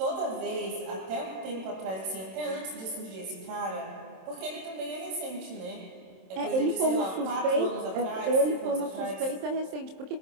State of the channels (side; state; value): left; late; 27 ms